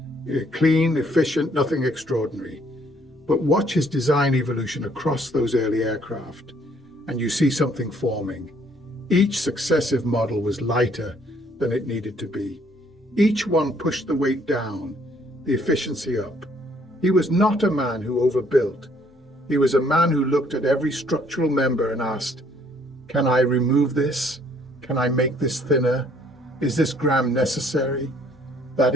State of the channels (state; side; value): normal; both; correlation 0.64